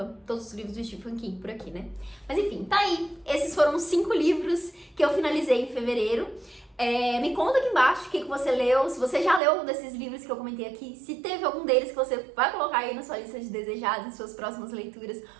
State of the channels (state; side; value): drops out; left; at 9.4 s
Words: todos os livros do Stephen King por aqui, né? Mas enfim, tá aí. Esses foram 5 livros que eu finalizei em fevereiro. Me conta aqui embaixo o que você leu, se você já leu algum desses livros que eu comentei aqui, se teve algum deles que você vai colocar aí na sua lista de desejados, em suas próximas leituras,